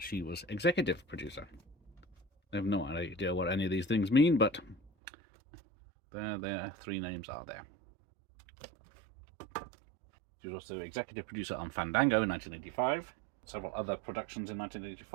was executive producer. I have no idea what any of these things mean, but their three names are there. She was also executive producer on Fandango in 1985, several other productions in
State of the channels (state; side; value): drops out; left; at 4.9 s